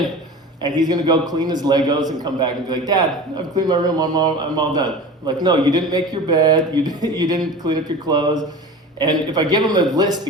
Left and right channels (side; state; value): both; normal; correlation 0.35